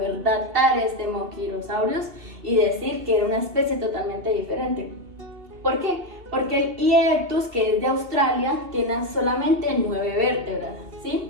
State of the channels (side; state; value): left; late; 2.7 ms